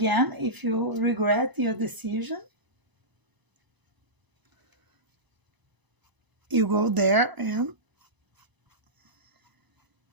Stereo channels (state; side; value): late; left; 1.0 ms